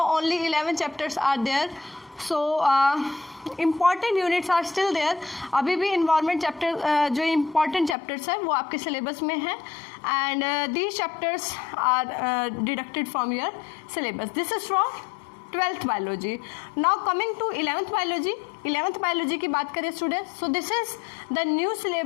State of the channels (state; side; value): drops out; right; at 8.0 s